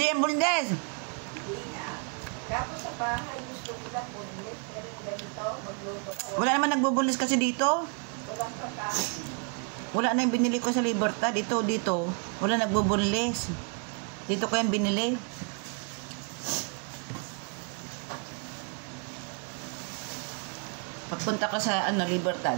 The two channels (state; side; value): quieter; left; 38.1 dB